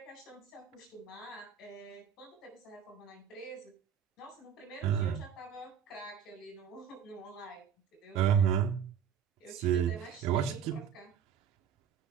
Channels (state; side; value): quieter; left; 8.3 dB